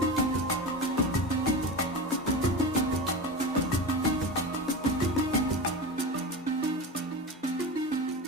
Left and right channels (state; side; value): normal; both; correlation 0.25